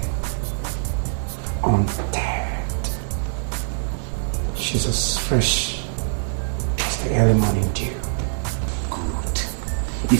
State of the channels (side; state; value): left; silent; digital silence